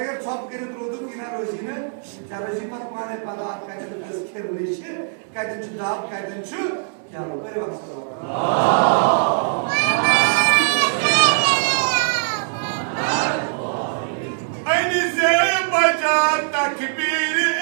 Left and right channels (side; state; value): left; silent; digital silence